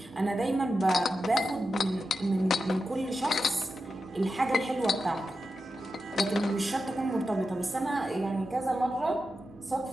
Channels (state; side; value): normal; both; correlation 0.90